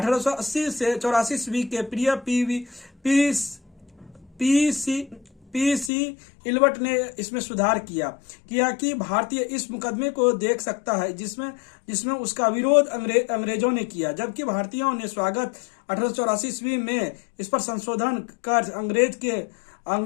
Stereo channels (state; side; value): drops out; right; at 5.9 s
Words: से 84 ईस्वी के प्रिय पीसी इल्बर्ट ने इसमें सुधार किया कि भारतीय इस मुकदमे को देख सकता है जिसमें उसका विरोध अंग्रेजों ने किया, जबकि भारतीयों ने स्वागत 1884 ईस्वी में इस पर संशोधन कर